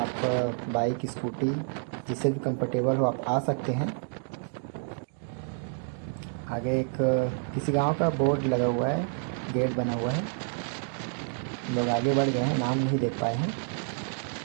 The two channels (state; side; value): silent; left; 56 dB below the other